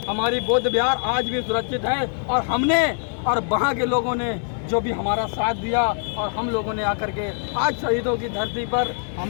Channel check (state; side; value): silent; right; 62 dB below the other